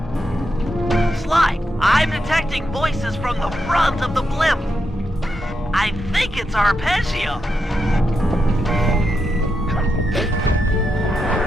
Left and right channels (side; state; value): both; normal; correlation 0.84